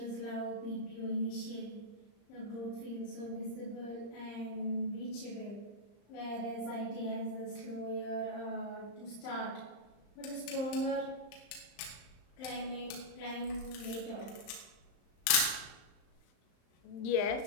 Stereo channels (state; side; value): late; right; 35 ms